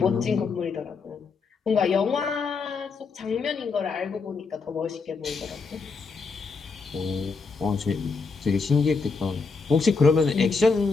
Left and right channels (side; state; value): right; quieter; 4.7 dB